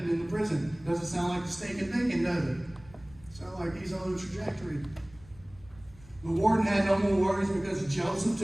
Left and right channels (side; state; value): left; noise; rumble, 23 dB below the sound